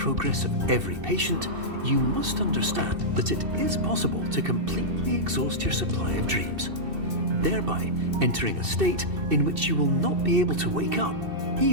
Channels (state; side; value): late; left; 2.7 ms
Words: of every patient, you must understand that it is possible to completely exhaust your supply of dreams, thereby entering a state in which you will not be able to wake up,